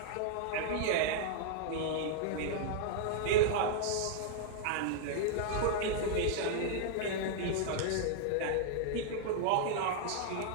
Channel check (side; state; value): both; different; correlation -0.01